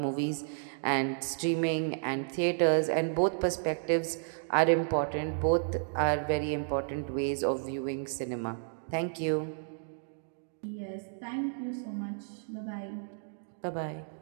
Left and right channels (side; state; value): left; silent; digital silence